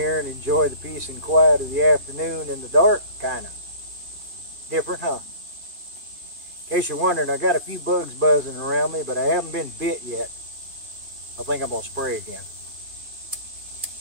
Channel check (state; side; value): late; left; 2.4 ms